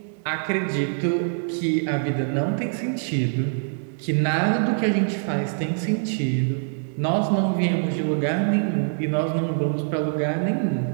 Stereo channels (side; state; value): left; silent; 62 dB below the other